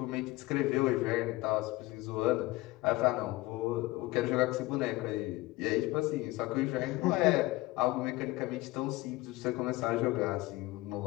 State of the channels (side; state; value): right; quieter; 19.9 dB